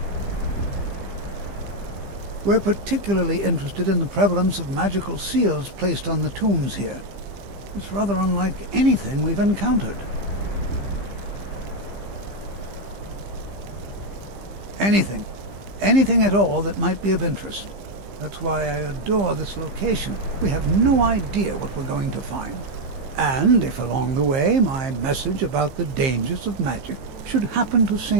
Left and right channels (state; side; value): late; left; 15 ms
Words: We're particularly interested in the prevalence of magical seals placed on the tombs here. It's rather unlike anything we've encountered. Anything. Anything at all that might be of interest. That's why I adore this location. We have no idea what we're going to find. And if along the way my message about the dangers of magic should happen to